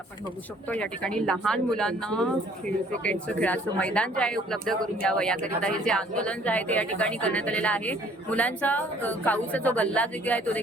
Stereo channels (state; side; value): normal; both; correlation 0.58